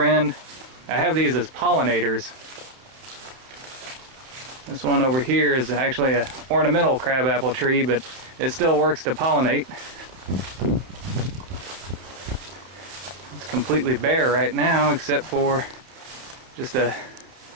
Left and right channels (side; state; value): left; late; 31 ms